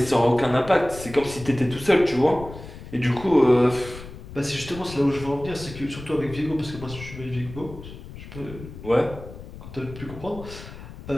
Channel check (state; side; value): noise; left; rumble, 14 dB below the sound